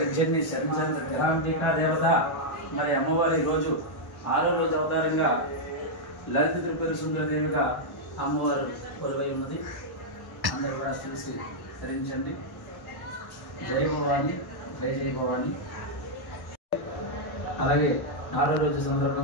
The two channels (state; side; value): late; right; 1.1 ms